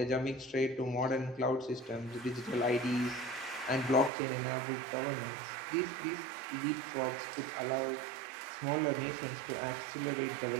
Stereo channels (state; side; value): drops out; left; at 4.1 s